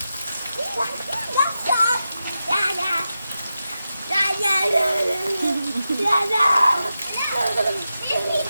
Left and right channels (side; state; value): both; inverted; correlation -0.90